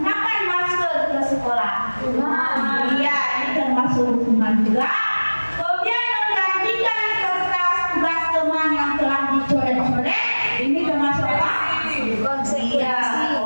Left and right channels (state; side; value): inverted; both; correlation -1.00